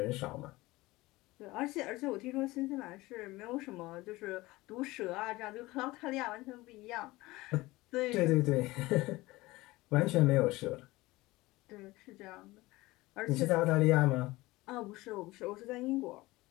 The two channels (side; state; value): right; quieter; 20.0 dB